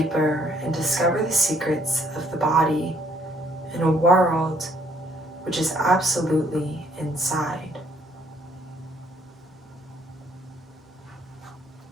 and discover the secrets of the body in a world which is absolutely inside.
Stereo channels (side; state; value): both; normal; correlation 0.65